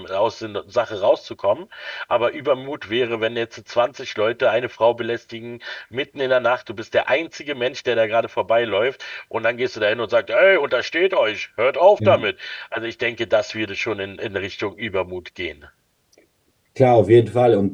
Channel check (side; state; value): both; identical; correlation 1.00